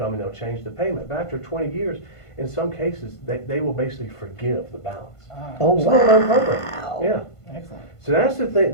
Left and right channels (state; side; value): late; right; 1.5 ms